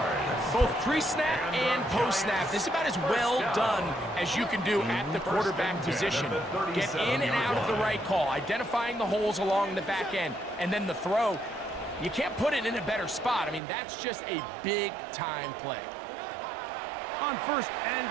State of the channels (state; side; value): drops out; left; at 13.6 s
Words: Both pre-snap and post-snap, this is about as well done as you can do at the quarterback position. Get in and out of the right call, identifying the holes along the back end, and then the throw. You can't put it in a better spot. I mean, that's just a big-time play. On first and